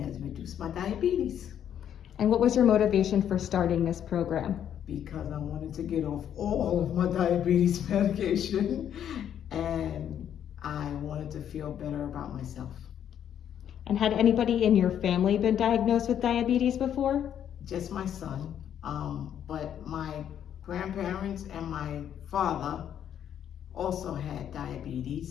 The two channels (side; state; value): right; quieter; 9.6 dB